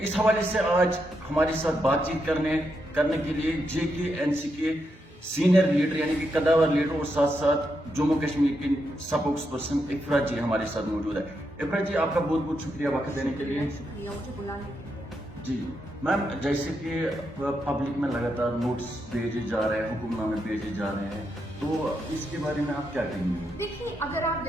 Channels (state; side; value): normal; both; correlation 0.82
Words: हवाले से आज हमारे साथ बातचीत करने के लिए JKNC के सीनियर लीडर यानी कि कदावर लीडर और साथ साथ जम्मू कश्मीर की स्पोक्स पर्सन इफ्रा जी हमारे साथ मौजूद है। इफ्रा जी, आपका बहुत बहुत शुक्रिया वक्त देने के लिए। शुक्रिया मुझे बुलाने के लिए। जी मैम, जैसे कि पब्लिक में लगातार नोट्स भेजे जा रहे हैं, हुक्मनामे भेजे जा रहे हैं, तो इसके बारे में आप क्या कहेंगे? देखिए, अगर आप